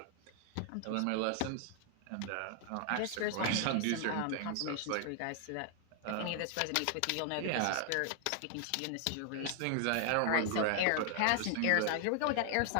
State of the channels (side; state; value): both; different; correlation 0.00